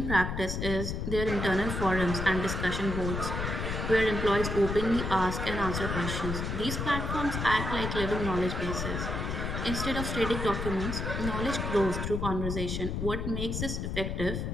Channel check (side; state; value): left; noise; rumble, 3 dB below the sound